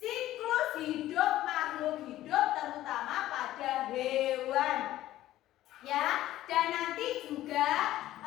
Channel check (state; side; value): quieter; right; 14.4 dB